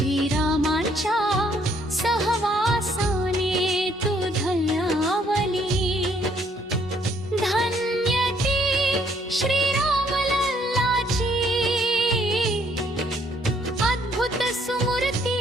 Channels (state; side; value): normal; both; correlation 0.67